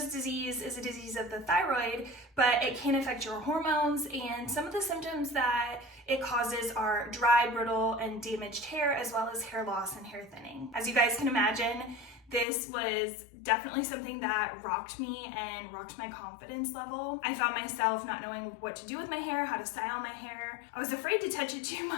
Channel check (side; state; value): right; drops out; at 12.5 s